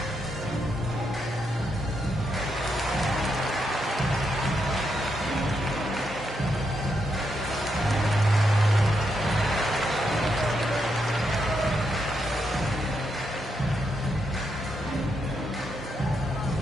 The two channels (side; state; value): both; normal; correlation 0.81